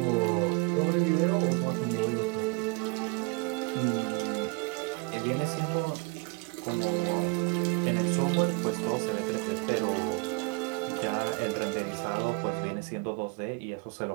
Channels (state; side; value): quieter; left; 30.2 dB